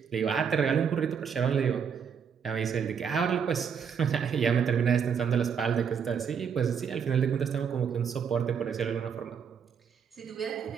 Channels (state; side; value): quieter; left; 7.1 dB